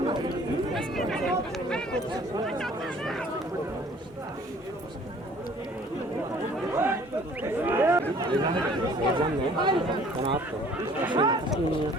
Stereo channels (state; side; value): normal; both; correlation 0.54